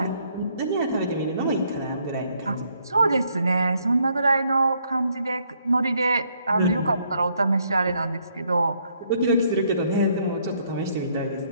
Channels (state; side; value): inverted; both; correlation -0.70